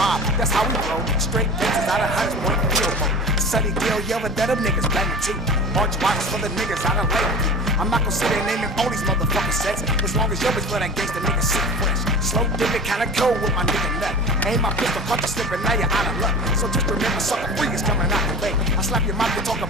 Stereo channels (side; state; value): both; normal; correlation 0.35